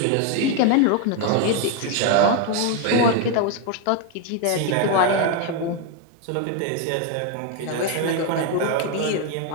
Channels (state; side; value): different; both; correlation 0.01